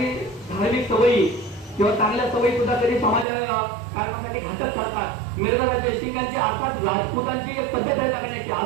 धार्मिक सवयी किंवा चांगल्या सवयी सुद्धा कधी समाज कारणामध्ये घातक ठरतात. मिर्झाराजे जयसिंगांची अर्थात राजपुतांची एक पद्धत आहे जगण्याची,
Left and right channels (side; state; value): left; drops out; at 3.2 s